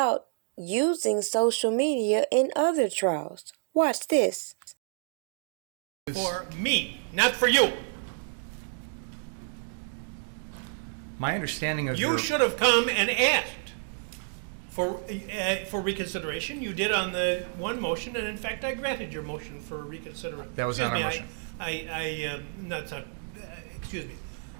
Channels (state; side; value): silent; left; digital silence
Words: using social media in other trials. Watch this. For me, not for you. My understanding of You should have come and asked for reconsideration. You did on the one motion, and in fact, I granted your motion for reconsideration. That was not a motion. Excuse me.